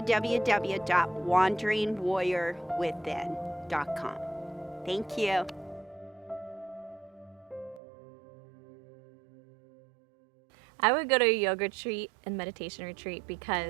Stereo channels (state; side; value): drops out; left; at 7.8 s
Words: Thank you. I would go to a yoga retreat and meditation retreat